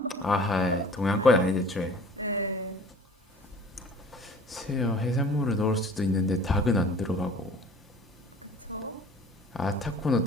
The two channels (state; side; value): normal; both; correlation 0.47